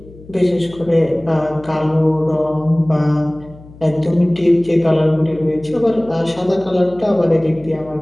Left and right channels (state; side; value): noise; left; hum, 21 dB below the sound